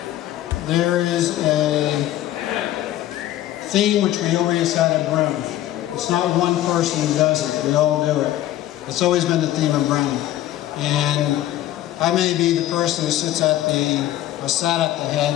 There is a theme which we always had at Brehm. It's not one person who does it, we all do it. It's always been the theme of Brehm. And I may be the person who sits at the, or sat at the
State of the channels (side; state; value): right; quieter; 13.7 dB